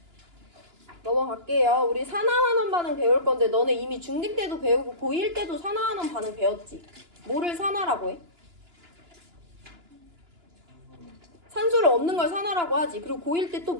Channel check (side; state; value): left; late; 2.9 ms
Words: 넘어갈게요. 우리 산하환원 반응 배울 건데 너네 이미 중딩 때도 배우고 고1 때도 산하환원 반응 배웠지? 뭐를 산하라고 해? 산소를 얻는 걸 산하라고 하지. 그리고 고1 때 또